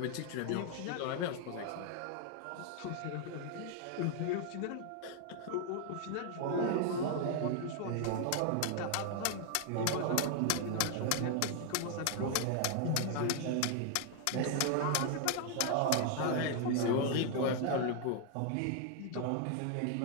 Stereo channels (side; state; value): both; different; correlation 0.00